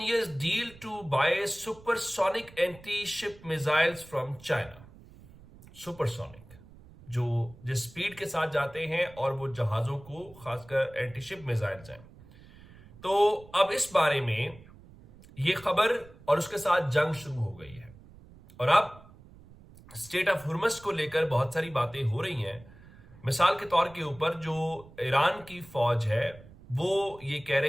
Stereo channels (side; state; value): right; noise; rumble, 22 dB below the sound